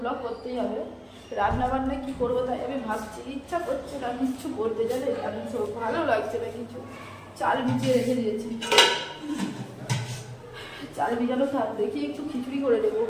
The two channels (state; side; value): identical; both; correlation 1.00